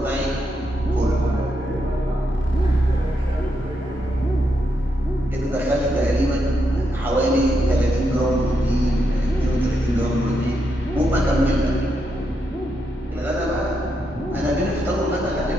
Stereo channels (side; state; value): both; normal; correlation 0.82